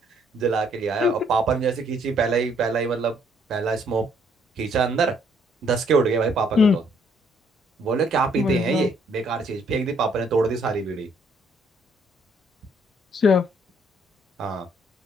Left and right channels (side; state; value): both; normal; correlation 0.67